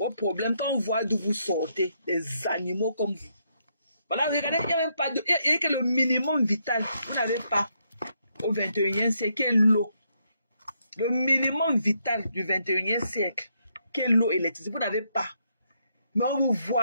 problèmes, quand on voit d'où vous sortez, des animaux comme vous. Voilà, regardez, il n'y a même pas de... Il y a que le minimum vital, vous n'avez pas au 21e siècle, qui est l'eau. Le minimum vital du 21e siècle, qui est l'eau et l'électricité, vous n'avez pas. Mais on vous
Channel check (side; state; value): both; inverted; correlation -0.76